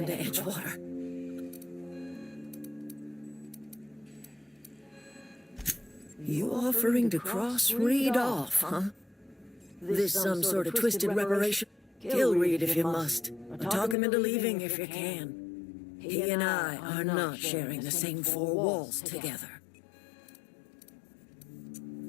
to Edgewater. You offering to cross Reed off, huh? This some sort of twisted reparation? Kill Reed if you must, or talk him into leaving if you can. He and I are not sharing the same four walls together.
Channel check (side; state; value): right; drops out; at 14.0 s